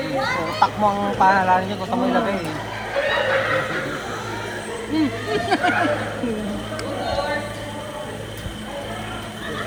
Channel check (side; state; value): both; identical; correlation 1.00